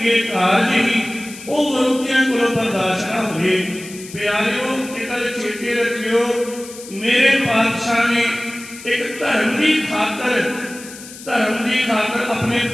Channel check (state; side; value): noise; left; hiss, 15 dB below the sound